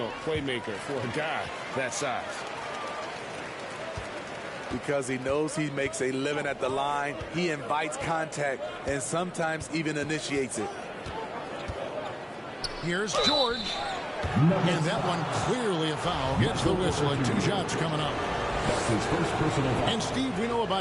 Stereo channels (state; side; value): identical; both; correlation 1.00